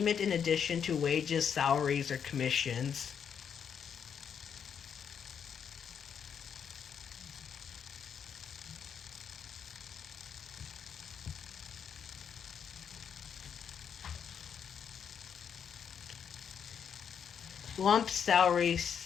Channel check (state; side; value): quieter; right; 7.6 dB